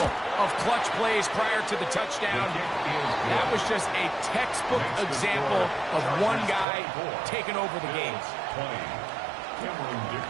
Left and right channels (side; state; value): left; drops out; at 6.7 s